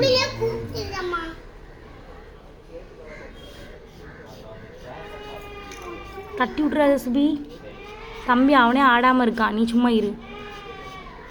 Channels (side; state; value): both; identical; correlation 1.00